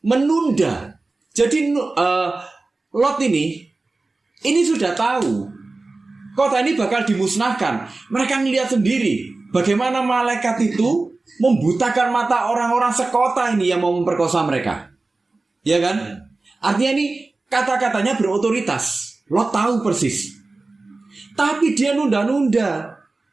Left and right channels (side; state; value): left; quieter; 3.4 dB